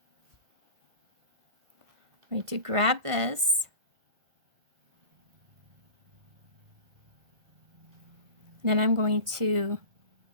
I'm going to grab this. And then I'm going to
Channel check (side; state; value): left; late; 1.7 ms